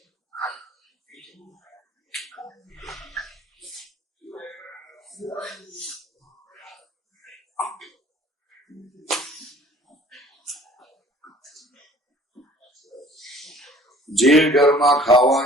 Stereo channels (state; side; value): normal; both; correlation 0.51